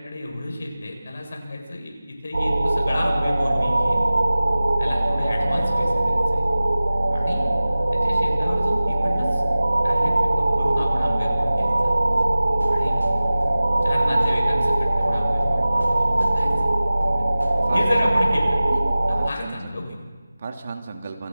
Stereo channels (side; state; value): both; inverted; correlation -0.98